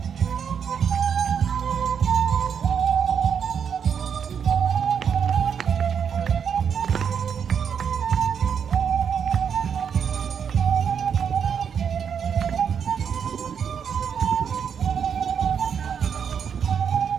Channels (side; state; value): left; quieter; 7.4 dB